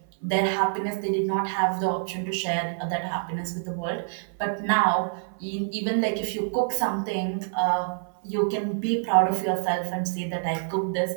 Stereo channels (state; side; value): silent; left; 57 dB below the other